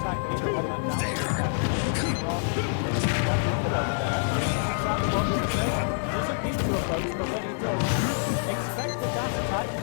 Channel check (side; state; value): right; silent; 58 dB below the other